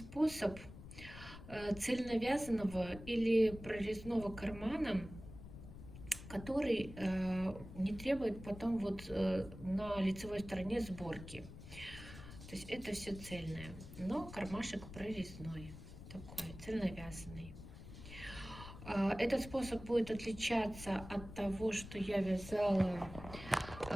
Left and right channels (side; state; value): left; noise; rumble, 13 dB below the sound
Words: цельновязанного или прорезного кармана, который не требует потом на лицевой стороне сборки. То есть это все цельное, но кармашек прорезной, такой цельновязанный. Этот способ будет отличаться от того, что я вязала